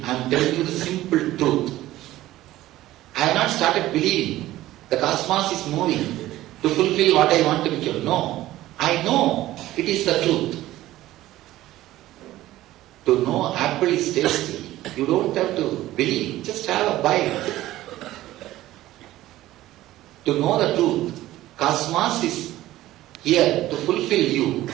I am telling you the simple truth. I have not started believing the cosmos is moving to fulfill what I want to become. No. I know it is the truth. To know apple is tasty, you don't have to believe, just have a bite. To know the truth, cosmos is here to fulfill you.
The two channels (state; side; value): quieter; left; 15.5 dB